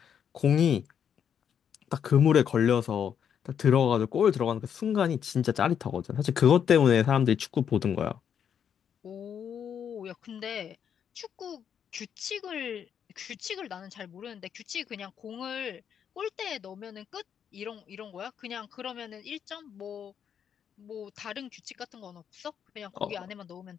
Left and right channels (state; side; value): quieter; right; 8.2 dB